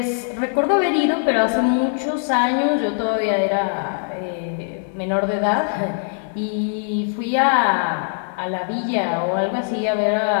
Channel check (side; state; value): right; silent; digital silence